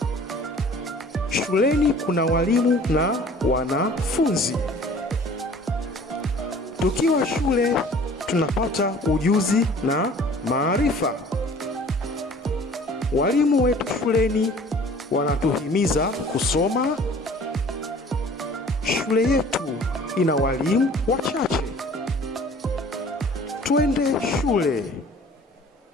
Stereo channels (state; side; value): normal; both; correlation 0.49